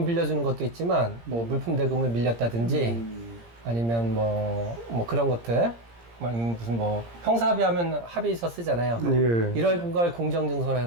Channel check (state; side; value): late; left; 17 ms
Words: 빌려주는 것도 있지만 뭐 물품 대금을 밀렸다든지 아니면 뭐 그런 것들 무슨 뭐 형사합의하면 합의서 쓰잖아요. 예. 이런 걸 공정증서로